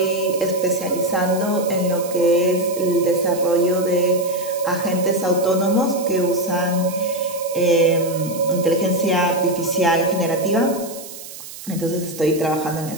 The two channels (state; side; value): noise; right; hiss, 14 dB below the sound